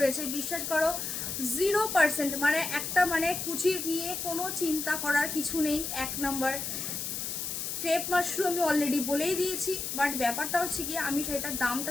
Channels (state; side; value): noise; left; hiss, 4 dB below the sound